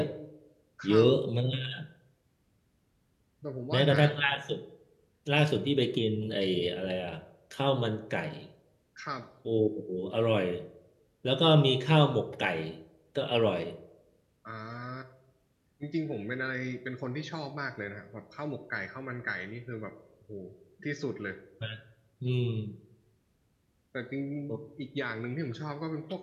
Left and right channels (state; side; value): identical; both; correlation 1.00